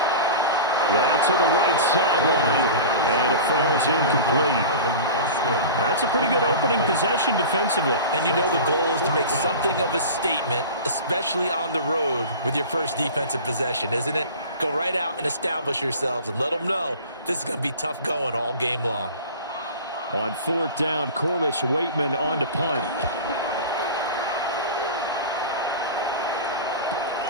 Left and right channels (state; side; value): inverted; both; correlation -0.35